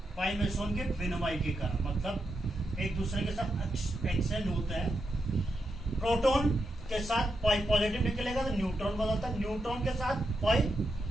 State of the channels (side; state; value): both; normal; correlation 0.85